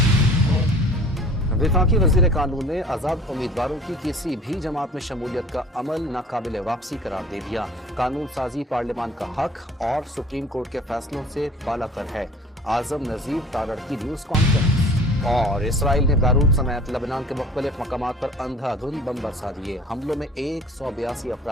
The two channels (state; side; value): normal; both; correlation 0.47